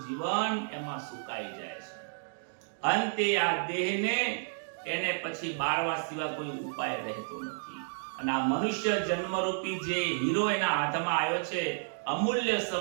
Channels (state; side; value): silent; left; digital silence